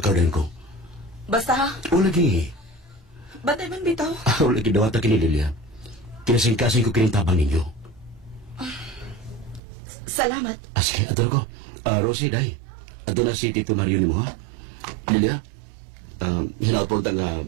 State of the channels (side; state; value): left; drops out; at 9.6 s